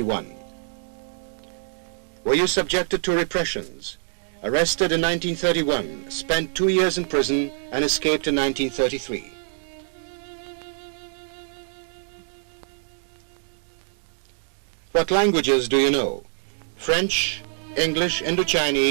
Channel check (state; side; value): silent; left; digital silence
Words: Were you subjected to repressions? Arrested in 1931, spent 2 years in prison and escaped in 1933. What languages do you know? French, English,